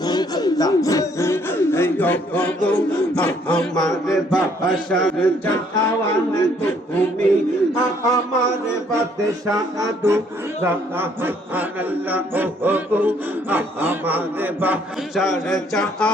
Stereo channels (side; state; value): both; normal; correlation 0.65